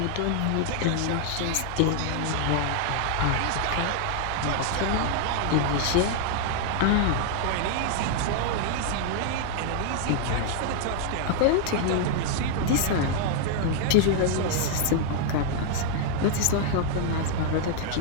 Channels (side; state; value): both; different; correlation 0.00